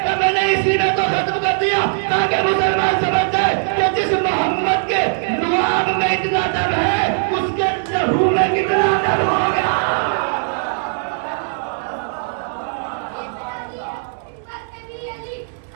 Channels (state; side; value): silent; left; digital silence